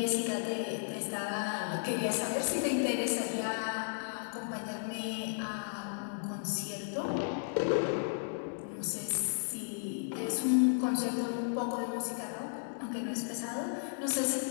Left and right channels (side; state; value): right; silent; digital silence